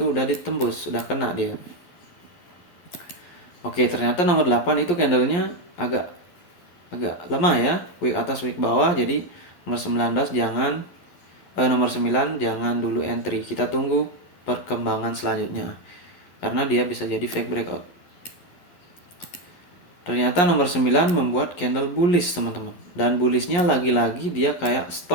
ditembus, udah kena dia. Oke, ternyata nomor 8 itu candlenya agak lemah ya, wick atas wick bawah. Jadi nomor 19 nomor 9 jangan dulu entry. Kita tunggu perkembangan selanjutnya. Karena dia bisa jadi fake breakout. Ternyata nomor 9 membuat candle bullish, teman-teman. Dan bullishnya lagi-lagi dia kayak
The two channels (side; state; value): right; late; 11 ms